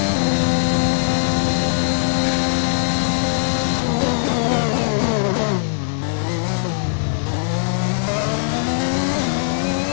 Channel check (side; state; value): right; silent; 56 dB below the other